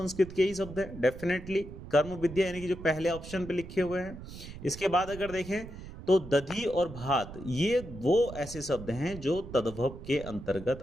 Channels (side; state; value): right; noise; rumble, 13 dB below the sound